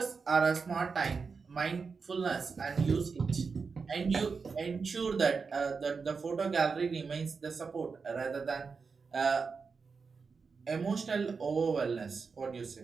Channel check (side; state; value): left; quieter; 5.0 dB